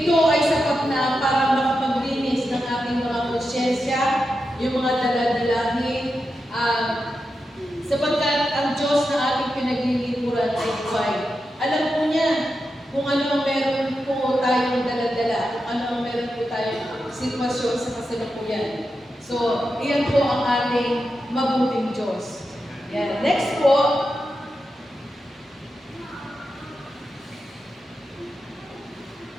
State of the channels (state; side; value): normal; both; correlation 0.89